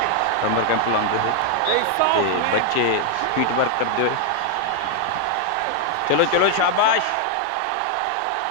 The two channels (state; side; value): different; both; correlation 0.00